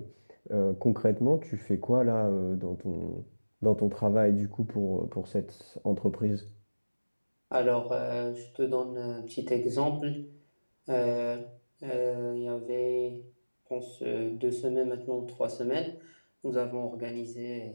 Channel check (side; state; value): both; inverted; correlation -1.00